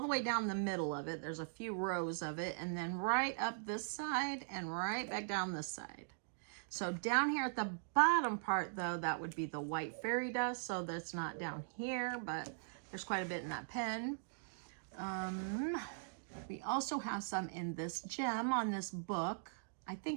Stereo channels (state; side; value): silent; left; digital silence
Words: the way down the middle of it. There's a few rows of it, and then right up this side and right back down this side. So down here at the bottom part, though, that would be the white fairy dust. So that's not down here, but there's quite a bit in that pen. We also have some in this gem on this book. I